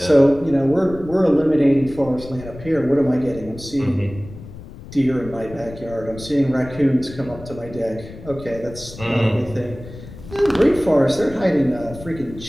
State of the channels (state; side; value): noise; left; rumble, 15 dB below the sound